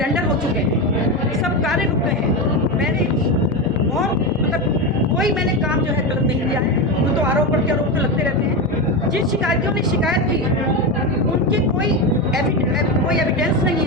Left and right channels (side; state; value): both; normal; correlation 0.15